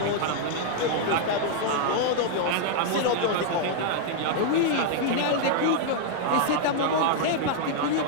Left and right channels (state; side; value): different; both; correlation 0.00